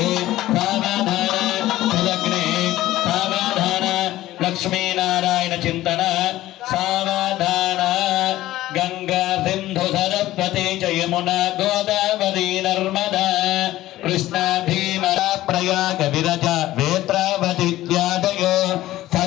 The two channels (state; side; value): quieter; right; 15.4 dB